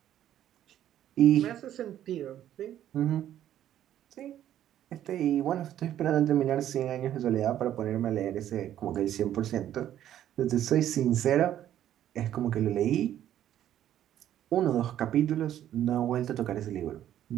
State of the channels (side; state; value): left; quieter; 11.5 dB